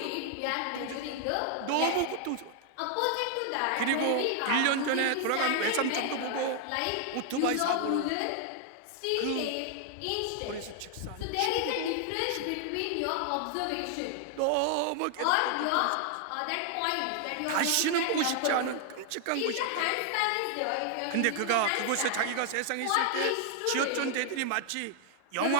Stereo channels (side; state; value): both; different; correlation 0.00